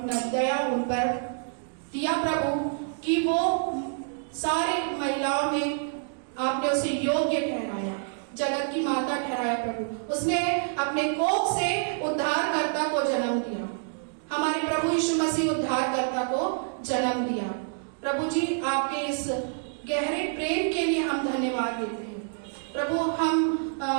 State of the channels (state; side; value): silent; left; digital silence